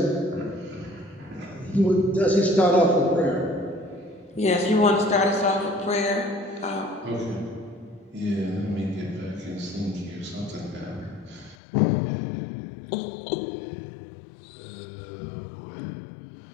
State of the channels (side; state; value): right; drops out; at 11.6 s